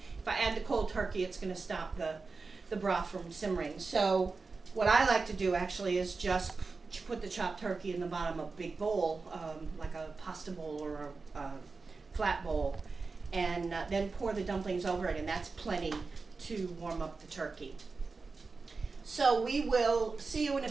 if I add the cold turkey, it's going to stop the broth from simmering. So what I like to do actually is just put the chopped turkey in the bottom of a big bowl, like a pasta bowl or a flat bowl, and then pour the dumplings over it, and that's plenty to warm up the turkey. So we will see you in a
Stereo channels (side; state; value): left; quieter; 4.2 dB